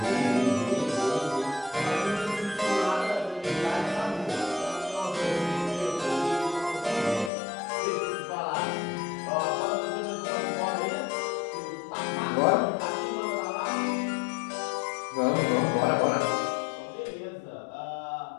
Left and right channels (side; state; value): right; drops out; at 7.3 s